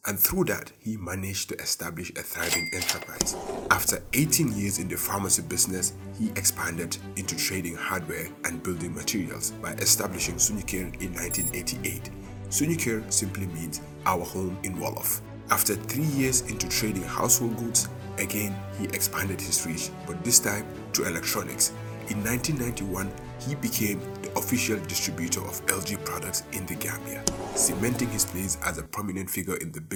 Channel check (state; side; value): identical; both; correlation 1.00